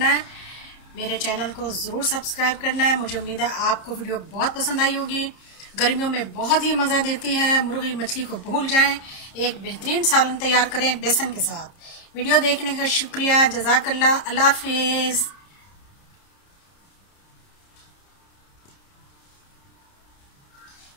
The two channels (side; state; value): right; late; 30 ms